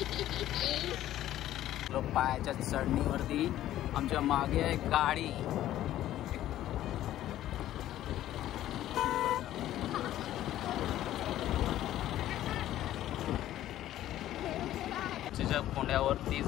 पायाच्या चढणीवरती आमच्या मागे आहे गाडी. चिंचेच्या कोंड्यावरती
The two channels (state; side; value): quieter; right; 13.2 dB